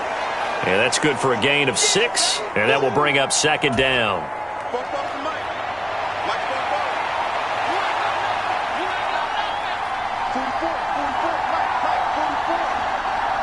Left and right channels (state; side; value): identical; both; correlation 1.00